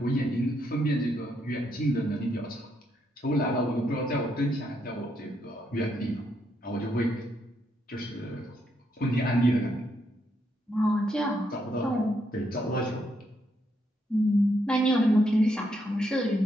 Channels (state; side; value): normal; both; correlation 0.77